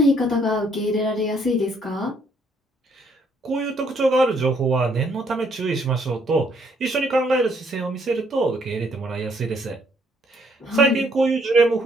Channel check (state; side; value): normal; both; correlation 0.68